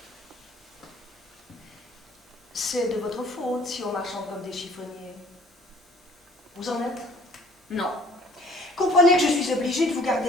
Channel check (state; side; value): normal; both; correlation 0.55